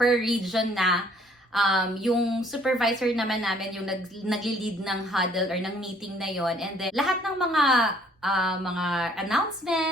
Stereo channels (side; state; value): both; normal; correlation 0.60